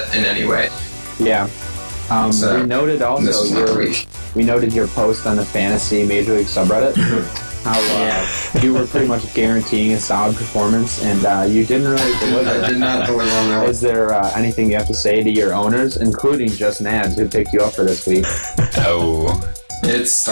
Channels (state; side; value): inverted; both; correlation -1.00